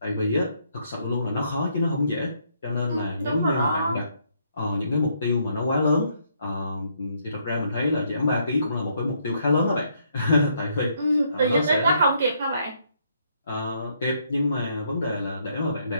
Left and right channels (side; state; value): both; inverted; correlation -0.72